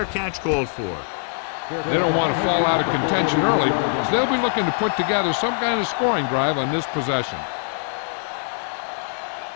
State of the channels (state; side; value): silent; right; 64 dB below the other